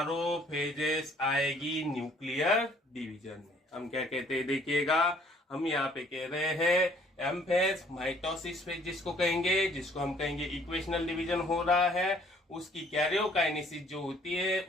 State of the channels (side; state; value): both; normal; correlation 0.60